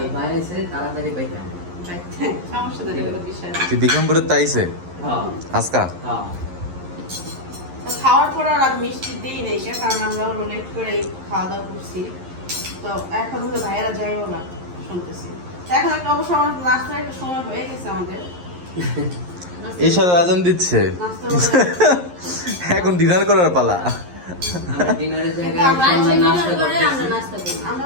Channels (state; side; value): late; left; 11 ms